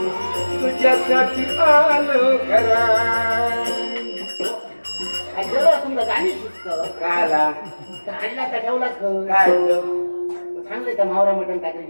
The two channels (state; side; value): inverted; both; correlation -1.00